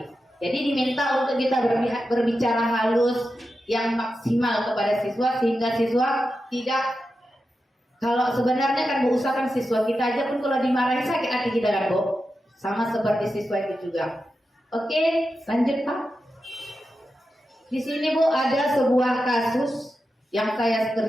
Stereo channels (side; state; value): both; normal; correlation 0.90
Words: Jadi diminta untuk kita berbicara halus yang maksimal kepada siswa sehingga siswa tidak. Kalau sebenarnya kan bu, usahakan siswa kita aja pun kalau dimarahi sakit hati kita kan bu. Sama seperti siswa itu juga. Oke, lanjut Pak. Di sini Bu ada sebuah kasus yang saya